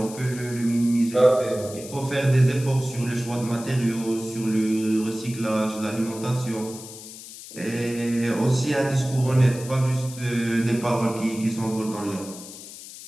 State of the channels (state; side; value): noise; left; hiss, 14 dB below the sound